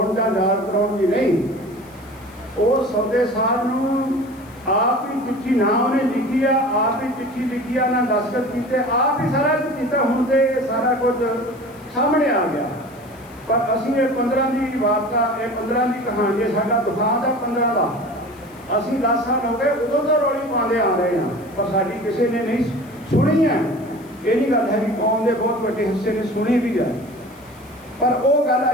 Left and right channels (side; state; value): left; noise; hiss, 27 dB below the sound